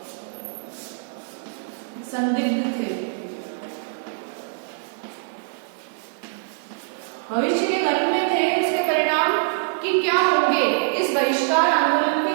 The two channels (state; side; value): silent; left; digital silence